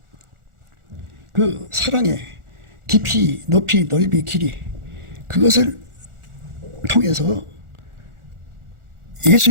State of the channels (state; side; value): late; left; 1.4 ms